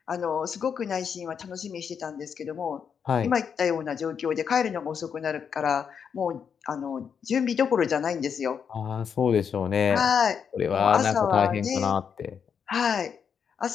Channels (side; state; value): right; quieter; 7.1 dB